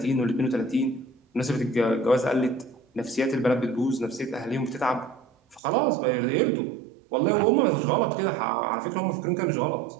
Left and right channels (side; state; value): left; drops out; at 5.6 s